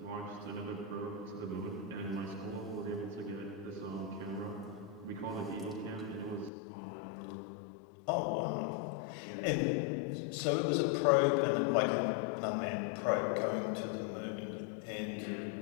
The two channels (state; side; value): drops out; right; at 6.5 s